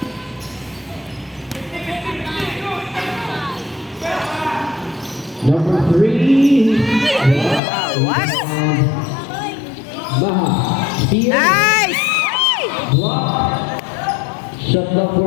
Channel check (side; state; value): right; drops out; at 7.6 s